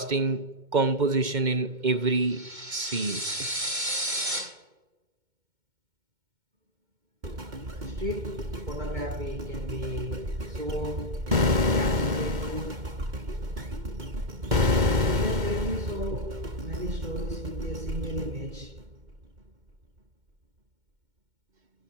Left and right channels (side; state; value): left; late; 2.1 ms